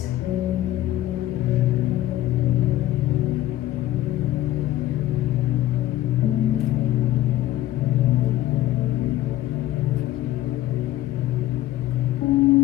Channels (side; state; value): right; quieter; 14.4 dB